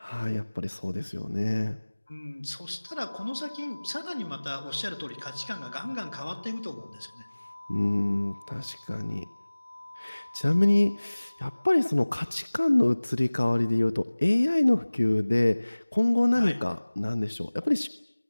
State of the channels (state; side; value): inverted; both; correlation -1.00